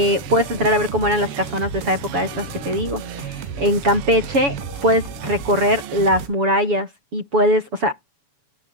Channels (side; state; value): left; late; 7.1 ms